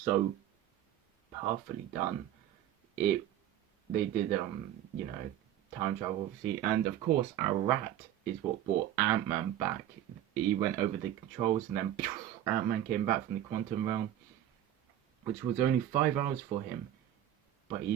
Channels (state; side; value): quieter; left; 11.8 dB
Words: perfectly done. They did time travel, obviously, and of course our rat is what brought Ant-Man back. He went over the controls and then Ant-Man came back from the quantum realm, which was only 5 hours for him, but